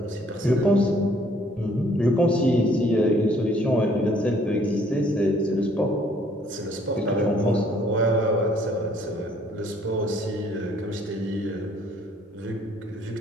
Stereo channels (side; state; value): both; normal; correlation 0.61